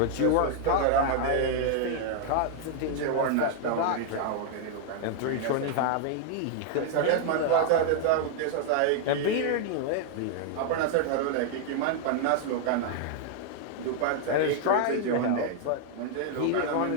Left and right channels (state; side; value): different; both; correlation 0.00